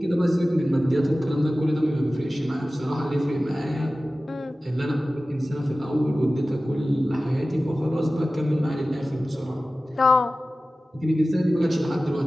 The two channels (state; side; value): normal; both; correlation 0.96